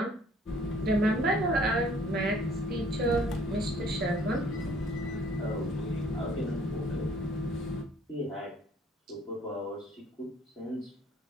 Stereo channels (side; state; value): both; normal; correlation 0.58